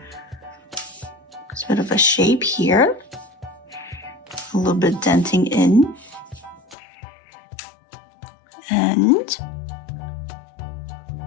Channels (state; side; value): drops out; right; at 6.8 s